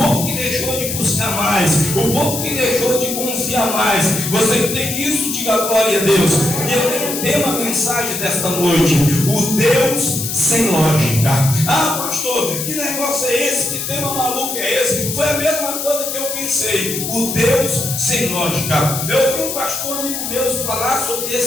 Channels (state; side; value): noise; left; hiss, 4 dB below the sound